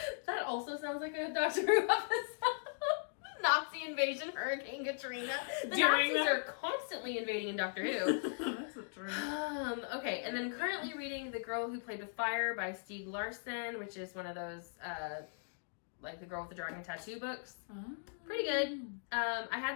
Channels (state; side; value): silent; right; digital silence